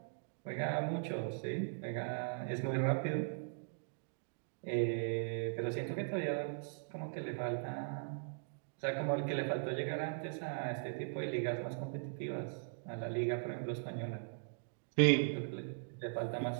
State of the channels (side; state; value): left; silent; digital silence